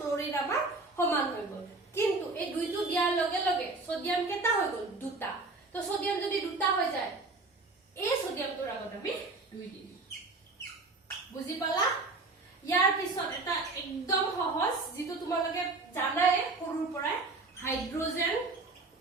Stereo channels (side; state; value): left; quieter; 3.4 dB